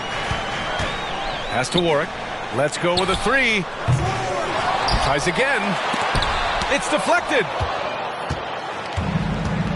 Pass to Warwick. Let's go with a 3. Tries again. It's deflected.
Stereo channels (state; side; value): identical; both; correlation 1.00